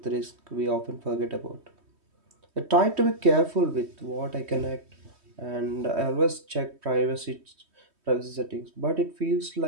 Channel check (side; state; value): left; late; 3.2 ms